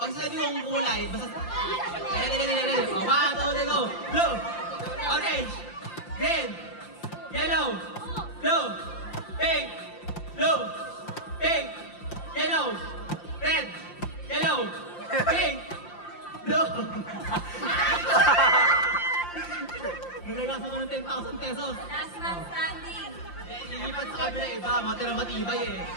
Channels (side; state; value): right; late; 5.8 ms